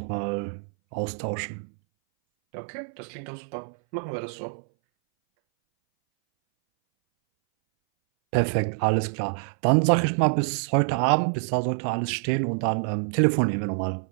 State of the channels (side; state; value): left; silent; 60 dB below the other